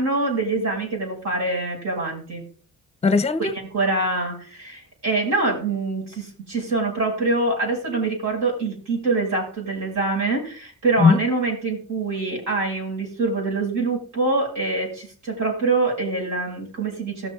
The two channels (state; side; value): normal; both; correlation 0.01